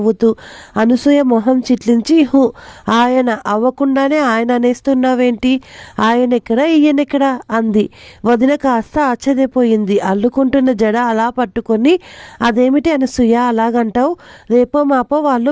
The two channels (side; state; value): both; identical; correlation 1.00